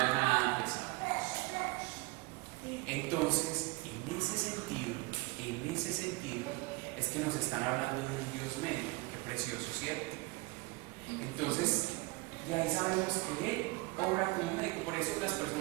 nada pesado. Entonces, en ese sentido, es que nos están hablando de un Dios médico. Qué precioso, ¿cierto? Entonces, de ahí sabemos que Él obra como médico. Por eso las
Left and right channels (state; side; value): quieter; left; 24.5 dB